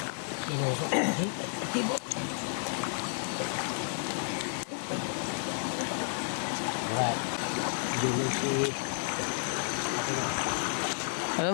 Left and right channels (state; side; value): silent; right; 57 dB below the other